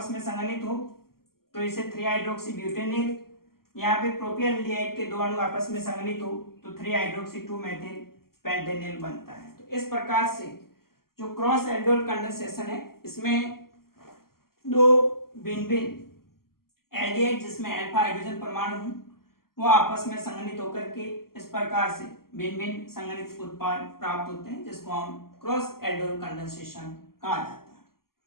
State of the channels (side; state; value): right; late; 0.93 ms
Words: में संघनित हो तो इसे 3 हाइड्रोक्सी ब्यूटेनिल, यहाँ पे प्रोपियल एल्डिहाइड के दो अणु आपस में संघनित हो तो 3 हाइड्रोक्सी 2 मेथिल पेंटेनिल बनता है। तो इस प्रकार से जो क्रॉस एल्डोल कंडेंसेशन है इसमें दो भिन्न भिन्न एल्डिहाइड जिसमें अल्फा हाइड्रोजन परमाणु हो वो आपस में संघनित होकर के इस प्रकार से भिन्न भिन्न संघनित उत्पाद प्राप्त होते हैं, जिसको हम क्रॉस एल्डोल कंडेंसेशन कहा जाता